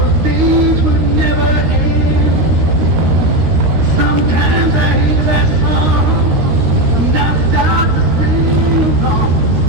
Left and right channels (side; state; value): left; late; 13 ms